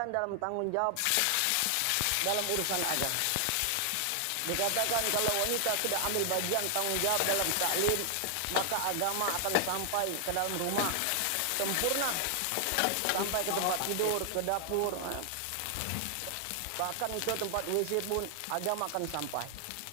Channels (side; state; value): both; different; correlation 0.00